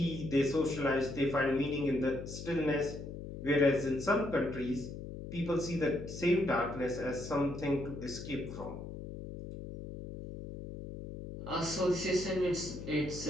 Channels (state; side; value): noise; left; hum, 9 dB below the sound